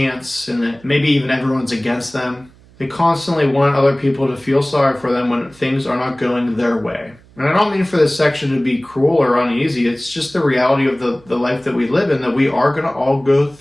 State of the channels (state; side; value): noise; right; hum, 27 dB below the sound